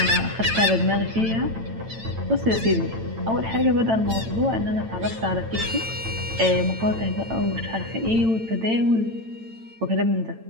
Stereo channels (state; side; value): late; left; 9.0 ms